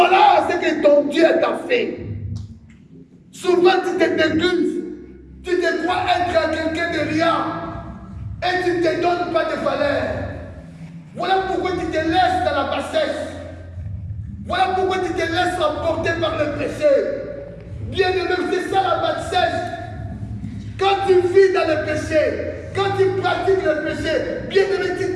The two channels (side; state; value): both; identical; correlation 1.00